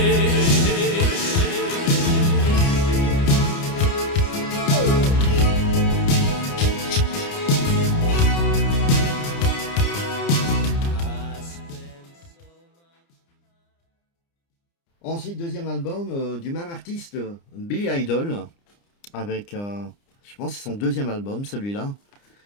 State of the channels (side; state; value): right; late; 29 ms